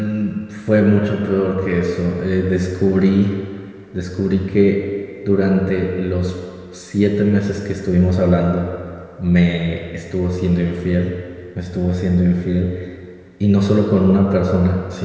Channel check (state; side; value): identical; both; correlation 1.00